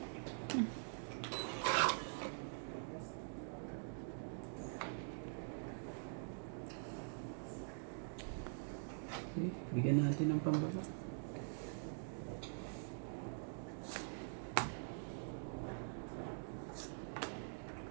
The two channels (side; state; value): left; silent; digital silence